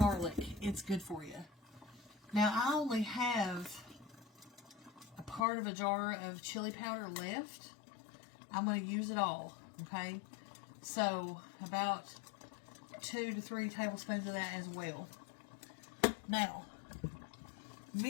It's good for you. Now, I only have a part of a jar of chili powder left. I'm going to use it all. Okay? So, about 2 to 3 tablespoons of that as well. Now,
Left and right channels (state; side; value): drops out; right; at 5.4 s